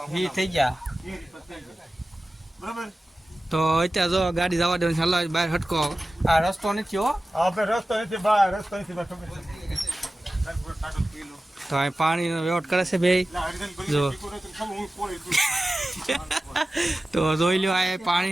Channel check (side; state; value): both; normal; correlation 0.95